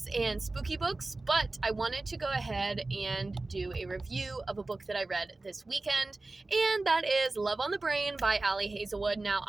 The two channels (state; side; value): quieter; left; 3.2 dB